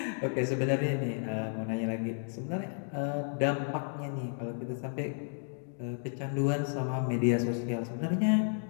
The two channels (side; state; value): right; silent; 56 dB below the other